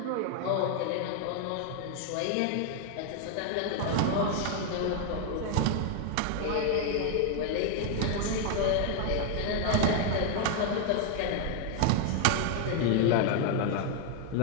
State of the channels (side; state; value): both; different; correlation 0.00